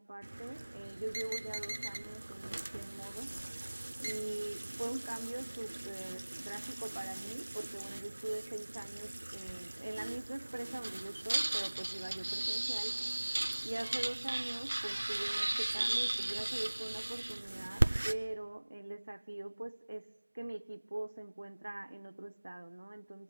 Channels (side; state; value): both; inverted; correlation -1.00